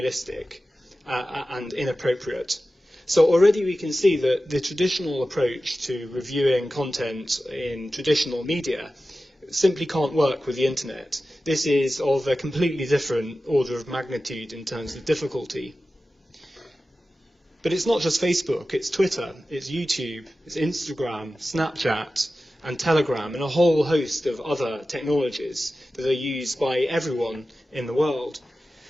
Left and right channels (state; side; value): normal; both; correlation 0.94